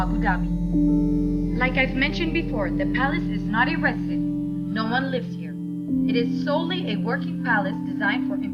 Dhabi. Like I've mentioned before, the palace is not a residence. No one lives here. It is solely a working palace designed for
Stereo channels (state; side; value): identical; both; correlation 1.00